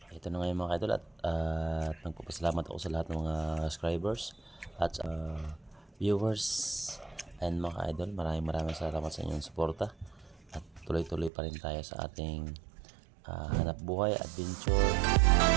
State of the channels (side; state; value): left; drops out; at 11.3 s